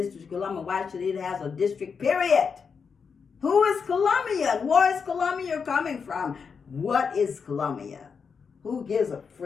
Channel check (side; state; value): right; quieter; 5.9 dB